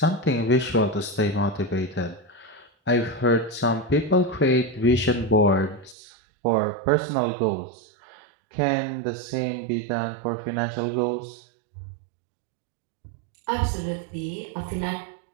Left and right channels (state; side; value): drops out; left; at 6.0 s